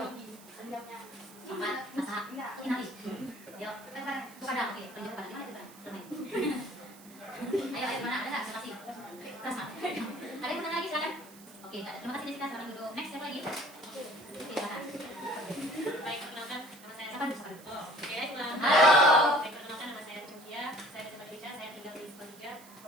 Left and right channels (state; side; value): noise; right; hiss, 21 dB below the sound